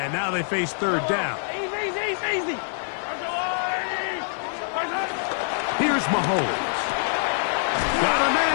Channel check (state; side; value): silent; right; 62 dB below the other